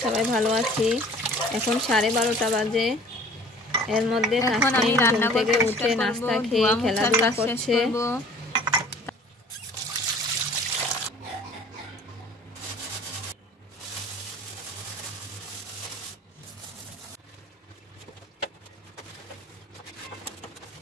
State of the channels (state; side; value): normal; both; correlation 0.49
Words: সবাই ভালো আছি। এখন 12:30 বাজে। এর মধ্যে এখন আমি রান্না থেকে উঠে নাস্তা খেয়ে খেলাধুলা করছে।